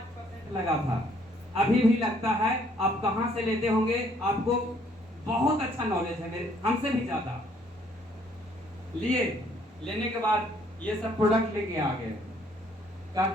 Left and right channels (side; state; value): both; normal; correlation 0.64